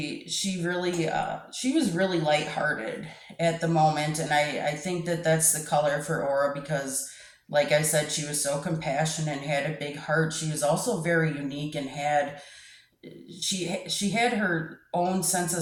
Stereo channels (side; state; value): both; identical; correlation 1.00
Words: was really lighthearted at the moment, and I think that that's the color for aura because, like I said, she was so compassionate and had a big heart. She was also very unique and had she had her own sense of